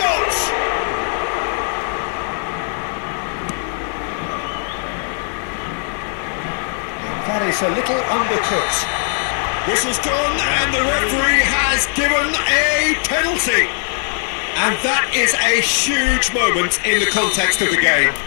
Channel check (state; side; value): silent; right; 55 dB below the other